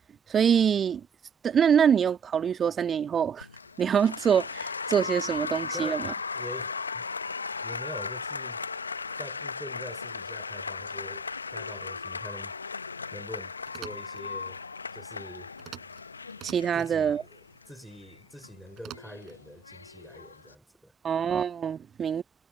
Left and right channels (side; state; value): left; quieter; 5.4 dB